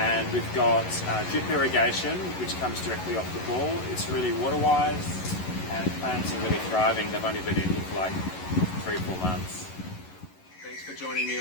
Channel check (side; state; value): right; late; 11 ms